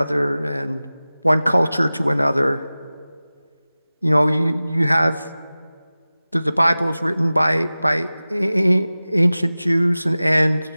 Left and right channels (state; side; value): inverted; both; correlation -0.97